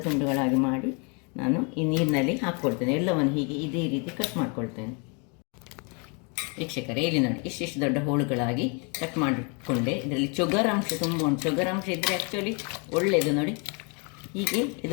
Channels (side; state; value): right; quieter; 34.6 dB